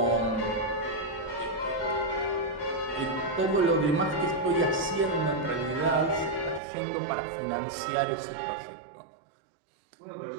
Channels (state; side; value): drops out; left; at 6.6 s